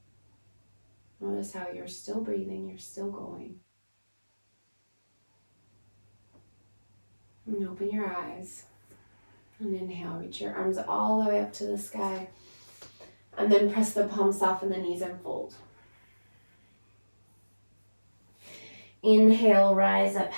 Notice how you're still breathing, you're still going. And open your eyes. And inhale, reach your arms all the way up to the sky. And then press the palms, soften the knees, and fold. Inhale, rise up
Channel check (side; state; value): both; inverted; correlation -1.00